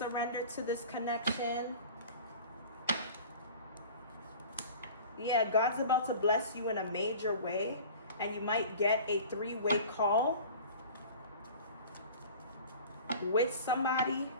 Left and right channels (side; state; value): both; inverted; correlation -0.41